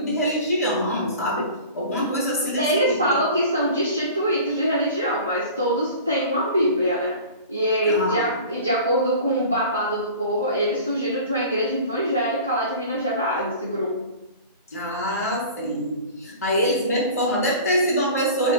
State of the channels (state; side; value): inverted; both; correlation -0.40